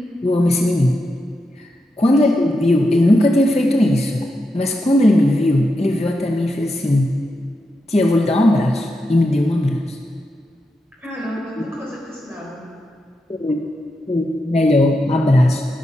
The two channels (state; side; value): normal; both; correlation 0.86